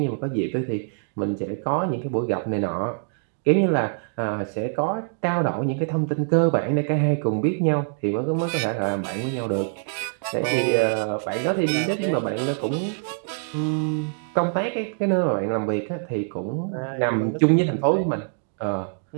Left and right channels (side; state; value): left; silent; 62 dB below the other